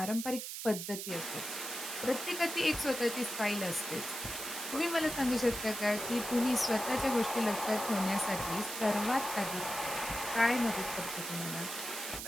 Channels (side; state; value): right; noise; hiss, 6 dB below the sound